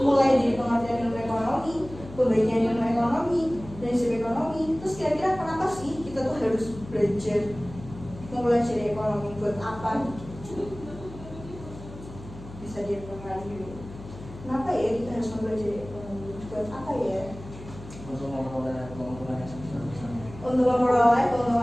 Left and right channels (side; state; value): left; noise; hum, 15 dB below the sound